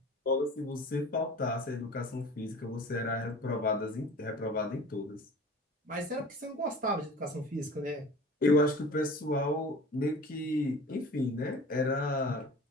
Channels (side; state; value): both; normal; correlation 0.41